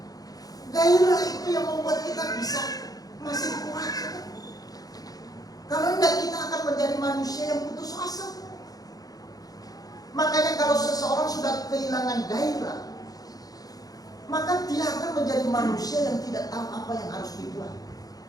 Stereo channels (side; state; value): right; late; 0.18 ms